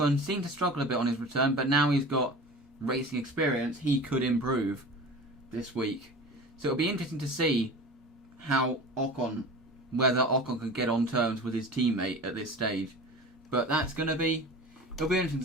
seemed to struggle a bit on his return, but now he's got racing experience, he could improve this week. So it'll be interesting to see whether Ocon can get on terms with his teammate at this stage. But it'll be interesting to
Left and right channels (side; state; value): both; normal; correlation 0.36